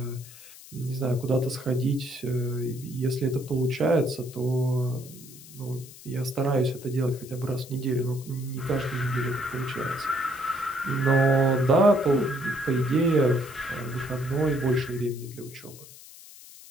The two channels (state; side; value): noise; left; hiss, 18 dB below the sound